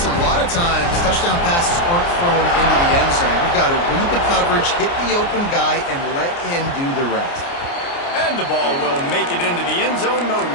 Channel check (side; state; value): right; late; 29 ms